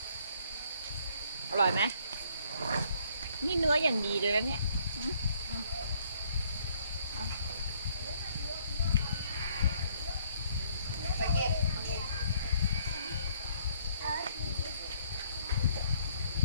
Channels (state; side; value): inverted; both; correlation -0.65